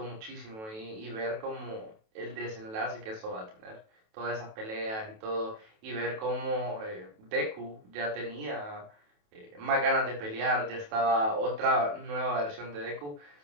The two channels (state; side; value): late; left; 28 ms